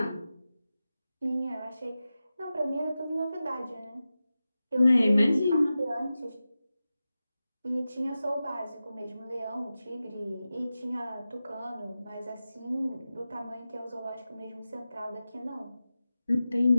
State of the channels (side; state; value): both; inverted; correlation -0.94